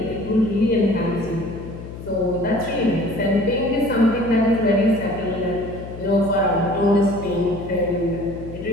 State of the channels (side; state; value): left; noise; hum, 12 dB below the sound